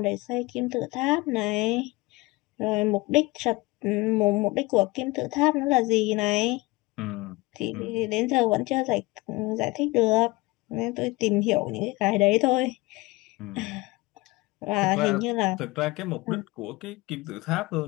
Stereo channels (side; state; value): right; quieter; 22.3 dB